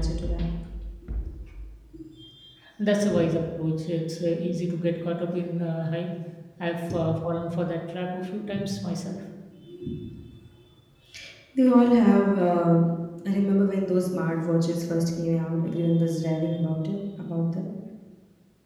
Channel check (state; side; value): identical; both; correlation 1.00